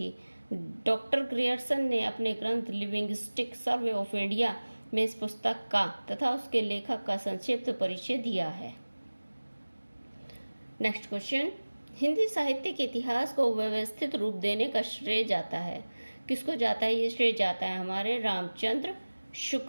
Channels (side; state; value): both; inverted; correlation -1.00